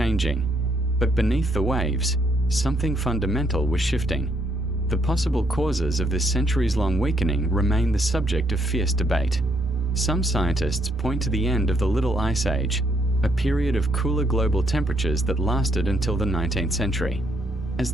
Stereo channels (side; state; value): both; normal; correlation 0.72